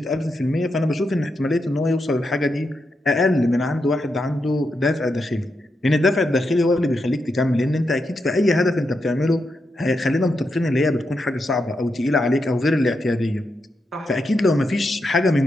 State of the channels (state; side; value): normal; both; correlation 0.85